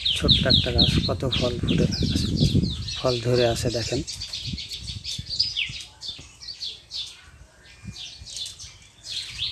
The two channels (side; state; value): both; identical; correlation 1.00